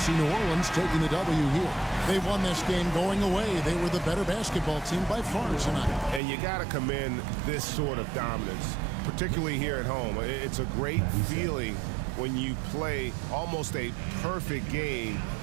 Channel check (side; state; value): left; drops out; at 6.2 s